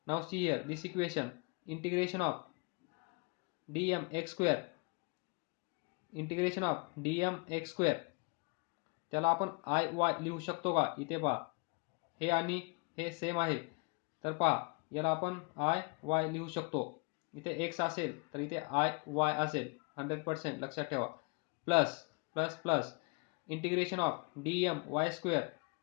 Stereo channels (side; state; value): right; quieter; 31.9 dB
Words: now see here this equation, integration of dm x square, integration of dm x square त्याला आपण आय वाय लिहू शकतो का? इथे पहा, हे आणि हे सेम आहे, तर पहा याला आपण आय वाय लिहू शकतो. इथे x असेल तर इथे आय वाय असेल, 100% लक्षात ठेवा. Plus plus plus integration of dm y square,